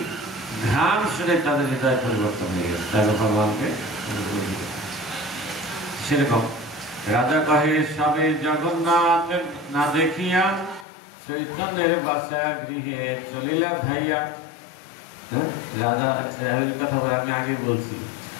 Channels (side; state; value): right; drops out; at 10.9 s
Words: ঘ্রাণ শুনে তাদের হৃদয় পরিবর্তন হয়ে গেছে, তাই ভগবানকে। সেরকম রাজা কহে সবে জগন্নাথ না দেখিয়া, চৈতন্যের বাসা গৃহে চলিলা ধাইয়া। রাজা কথা বলে আমি আগে বলছি,